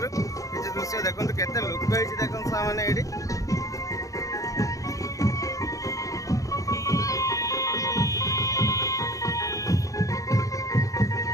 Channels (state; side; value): late; right; 0.16 ms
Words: किसी दृश्य देखो केते लोक देखो मैंने ये